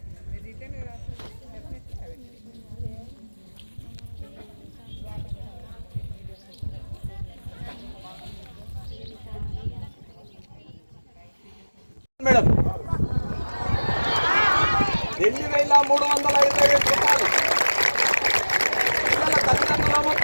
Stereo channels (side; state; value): both; inverted; correlation -1.00